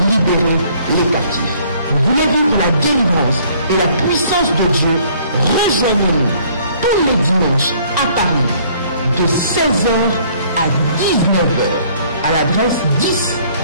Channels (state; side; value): inverted; both; correlation -0.59